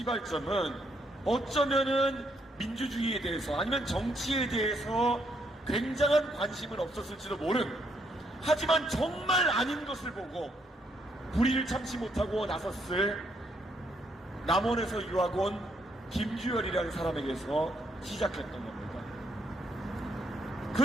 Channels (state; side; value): normal; both; correlation 0.74